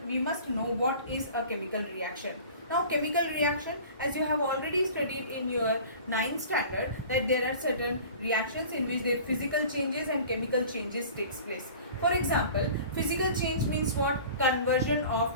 must know what is a chemical reaction. Now chemical reaction, as you have already studied in your 9th standard, that there are certain reactions in which the physical changes and chemical changes takes place. For example, physical change means what? Conversion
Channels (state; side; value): inverted; both; correlation -0.43